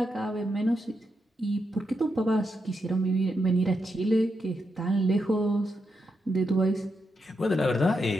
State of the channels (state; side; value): normal; both; correlation 0.84